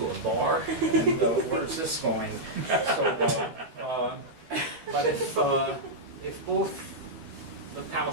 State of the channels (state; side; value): late; left; 12 ms